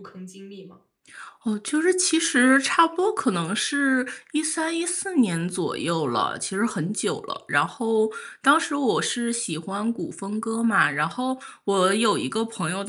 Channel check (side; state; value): both; identical; correlation 1.00